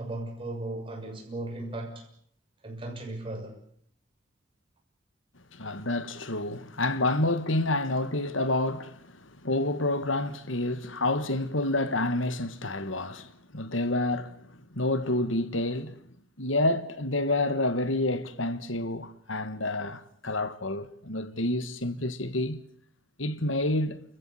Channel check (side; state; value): both; normal; correlation 0.00